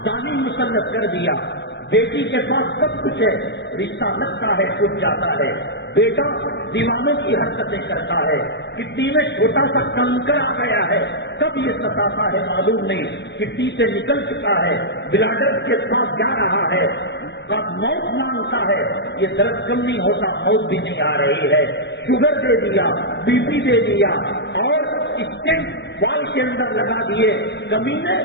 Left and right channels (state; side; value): late; right; 0.51 ms